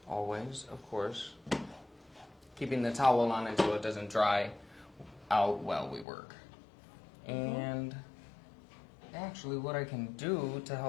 Always, of course, keeping the towel on it so it doesn't dry out while we work. And actually what I can do to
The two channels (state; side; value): drops out; right; at 6.1 s